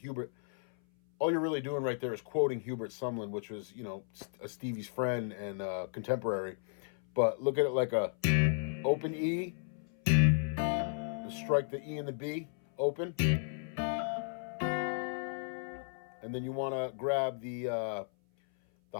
All you're really doing right there is quoting Hubert Sumlin, which was, you know, a Stevie's friend and contemporary. But look at it like a open E, strike the E and the B, open. And then you want to grab the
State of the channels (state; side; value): silent; right; 55 dB below the other